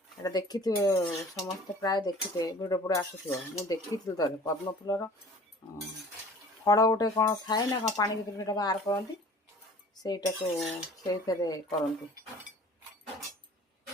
देखी थे समस्त प्राय देखी थे भिडियो पुड़े आसुव मुझे देखी थे थे पद्म फूलर फल गोटे कौन थाए ना कौन पानी भर बाहर करती से करती।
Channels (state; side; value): normal; both; correlation 0.47